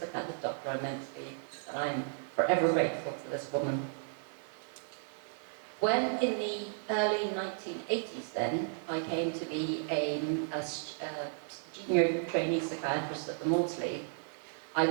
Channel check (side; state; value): left; silent; 55 dB below the other